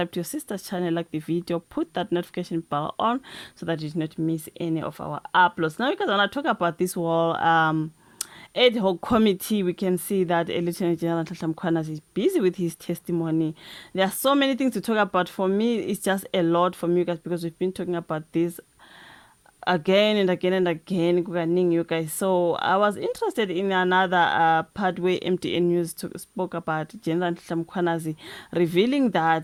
to your sister's channel, like the video, put that notification bell on so that you do not miss any of our uploads. Now, because I want to talk about this whole ad hoc committee, we can see that Lieutenant General Nhlanhla Mkhwanazi is busy with his testimony. There are so many things to talk about. For me, it's just a lot for me guys, because we've been talking about this again and again and again, you guys. So I was interested in another part where MTN News spoke about General Nhlanhla Mkhwanazi revealing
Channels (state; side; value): identical; both; correlation 1.00